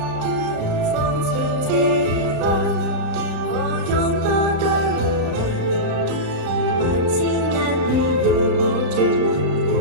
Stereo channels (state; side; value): late; left; 34 ms